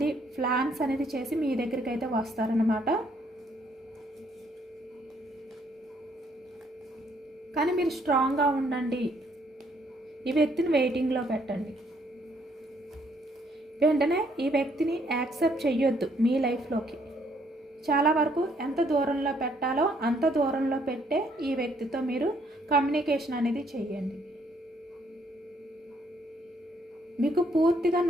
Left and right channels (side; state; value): both; normal; correlation 0.68